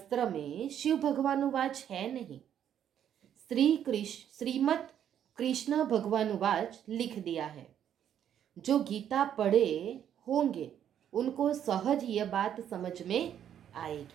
में शिव भगवानुवाच है नहीं। श्रीमद् कृष्ण भगवानुवाच लिख दिया है। जो गीता पढ़े होंगे उनको सहज यह बात समझ में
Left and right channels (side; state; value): left; quieter; 9.7 dB